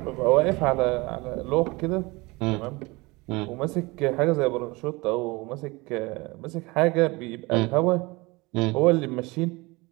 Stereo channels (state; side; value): quieter; left; 24.0 dB